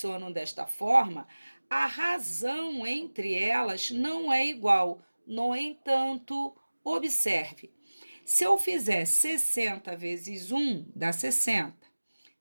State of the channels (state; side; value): inverted; both; correlation -1.00